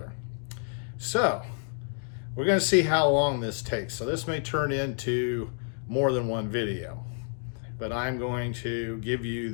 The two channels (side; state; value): right; silent; 58 dB below the other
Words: So, we're going to see how long this takes. So this may turn into more than one video, but I'm going to give you